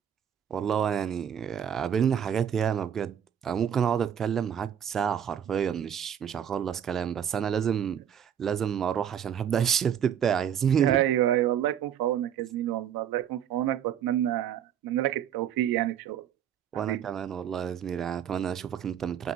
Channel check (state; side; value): quieter; left; 9.1 dB